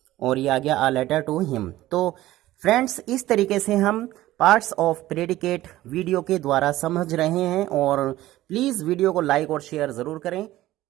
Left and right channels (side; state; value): left; quieter; 15.7 dB